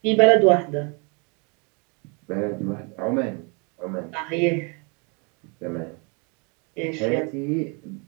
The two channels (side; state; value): left; quieter; 32.9 dB